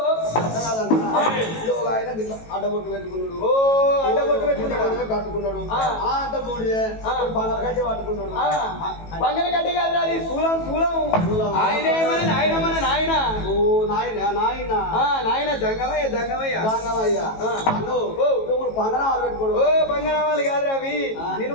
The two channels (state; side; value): late; right; 18 ms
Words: ఆయన అడ్డబొట్టు పెట్టుకున్నాడు అడ్డబొట్టు పెట్టుకున్నాడు కట్టుకున్నాడు అంత బూడిదే పంగల కట్టే పట్టుకున్నాడు పంగల కట్టే కాదు అది శూలం శూలం ఆయన మన నాయన మన నాయన ఓ నాయన నాయన నాయన జంగమయ్య జంగమయ్య జంగమయ్య ఇప్పుడు పంగనామాలు పెట్టుకోడు ఓ పంగనామాలు కాదు అవి